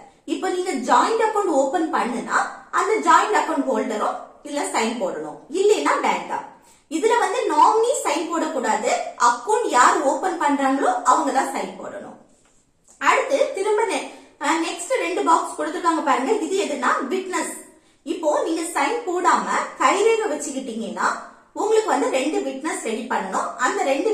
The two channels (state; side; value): identical; both; correlation 1.00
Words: இப்போ நீங்க ஜாயிண்ட் அக்கௌண்ட் ஓபன் பண்ணுனா அந்த ஜாயிண்ட் அக்கௌண்ட் ஹோல்டரும் இல்ல சைன் போடணும், இல்லைன்னா வேண்டாம். இதுல வந்து நாமினி சைன் போடக்கூடாது, அக்கௌண்ட் யார் ஓபன் பண்றாங்களோ அவங்க தான் சைன் போடணும். அடுத்து திரும்ப நெக்ஸ்ட் ரெண்டு பாக்ஸ் கொடுத்திருக்காங்க பாருங்க, இது எதுனா விட்னஸ். இப்போ நீங்க சைன் போடாம கைரேகை வச்சுக்கிட்டீங்கன்னா உங்களுக்கு வந்து ரெண்டு விட்னஸ் ரெடி பண்ணணும். அந்த ரெண்டு